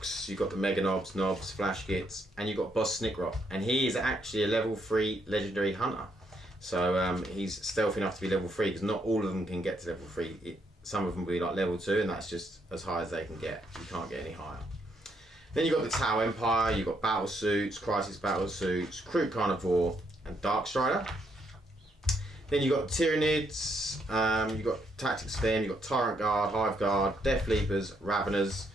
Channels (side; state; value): both; normal; correlation 0.75